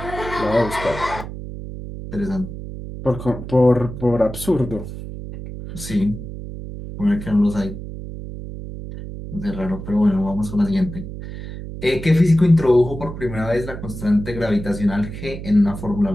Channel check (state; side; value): noise; right; hum, 10 dB below the sound